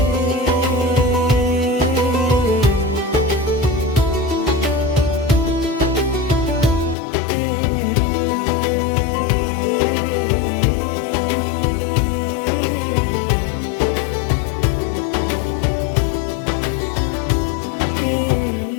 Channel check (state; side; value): drops out; right; at 7.0 s